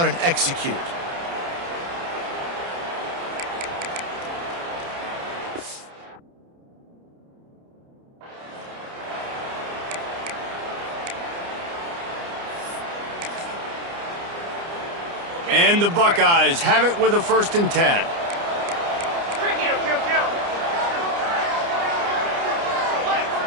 and execute. And the Buckeyes have it with a 1st and 10.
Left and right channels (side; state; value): left; late; 29 ms